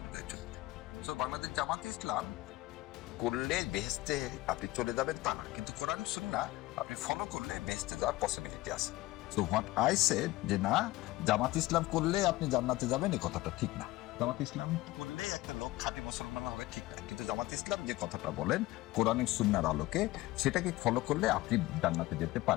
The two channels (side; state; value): right; quieter; 18.6 dB